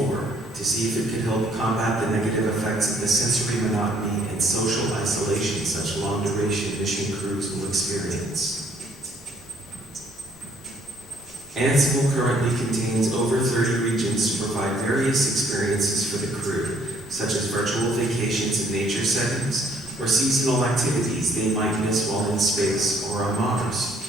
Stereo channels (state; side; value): normal; both; correlation 0.64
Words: to see if it could help combat the negative effects of the sensory monotony and social isolation such long-duration mission crews will experience. Ansible currently contains over 30 regions to provide various experiences for the crew, such as virtual vacations in nature settings or seasonal activities they might miss while in space or on Mars.